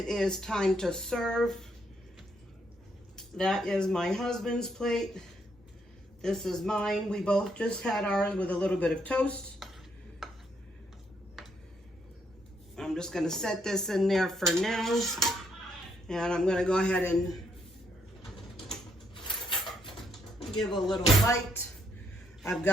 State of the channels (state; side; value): normal; both; correlation 0.74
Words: is time to serve. That is my husband's plate. This is mine. We both just had ours with a little bit of toast. I'm just gonna set this in there for now. And I'm gonna go ahead and give a little bite. I've